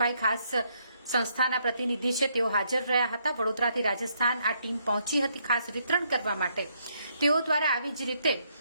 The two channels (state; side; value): inverted; both; correlation -0.73